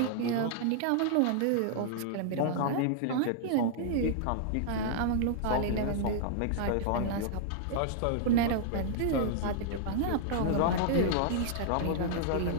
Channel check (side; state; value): both; different; correlation -0.01